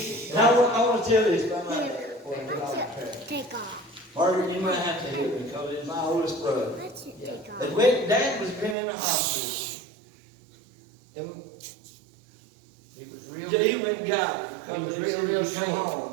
And I want to tell this about my dad before I get off the track. Take off. Margaret, you might have to help me because it's my oldest brother. That's it. Take off. And when Dad was been in the hospital, and He was real, he went and got it. He was Because real he sick. come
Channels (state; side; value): drops out; left; at 8.8 s